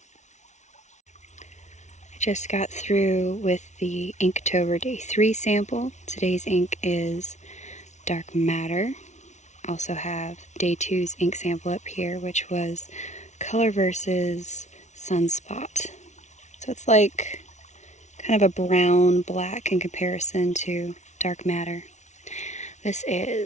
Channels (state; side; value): late; right; 0.33 ms